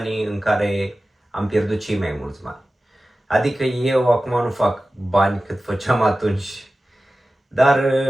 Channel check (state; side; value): normal; both; correlation 0.95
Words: în care am pierdut cei mai mulți bani. Adică eu acum nu fac bani cât făceam atunci. Dar,